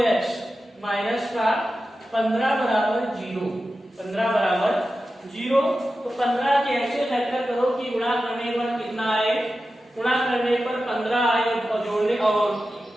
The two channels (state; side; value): normal; both; correlation 0.92